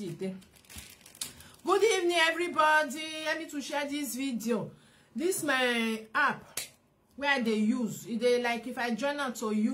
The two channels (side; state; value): both; identical; correlation 1.00